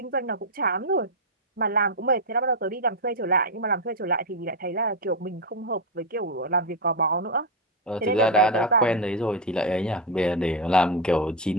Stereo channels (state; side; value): normal; both; correlation 0.05